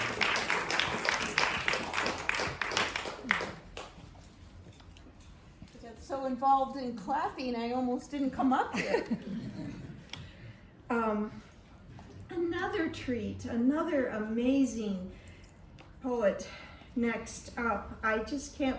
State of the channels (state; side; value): identical; both; correlation 1.00